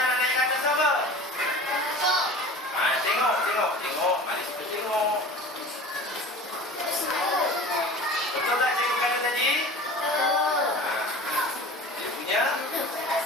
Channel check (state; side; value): normal; both; correlation 0.39